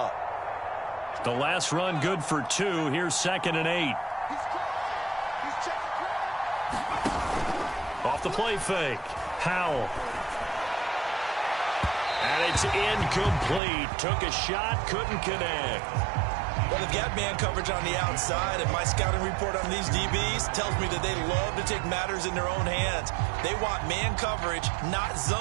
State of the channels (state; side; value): drops out; left; at 13.6 s